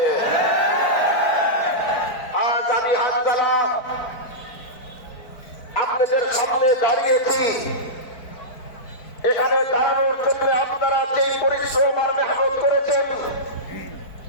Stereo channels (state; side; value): late; right; 4.5 ms